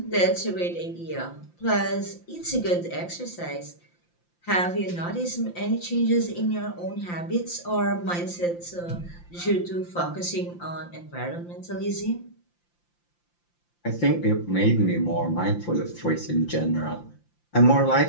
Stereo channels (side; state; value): right; late; 5.8 ms